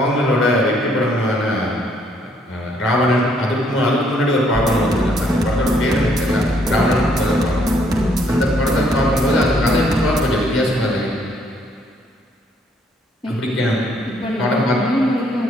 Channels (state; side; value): normal; both; correlation 0.68